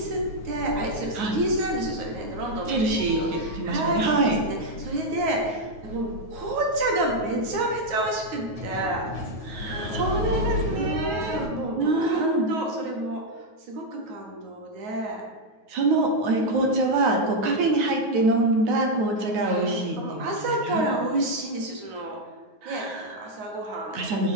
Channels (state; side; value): late; left; 9.4 ms